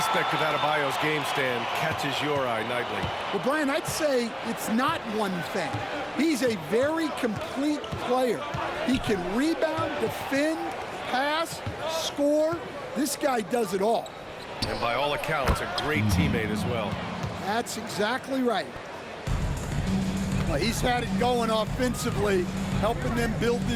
of Adebayo's game stand catches your eye nightly? Well, Brian, I'd say it's not one thing. He's a very complete player. He can rebound, defend, pass, score. This guy does it all. And by all accounts, a great teammate as well. That's exactly right. Well, he's had it going offensively, helping them build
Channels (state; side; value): identical; both; correlation 1.00